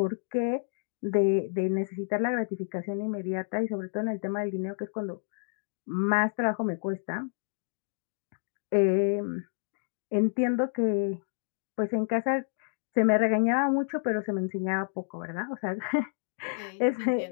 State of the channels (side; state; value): right; silent; digital silence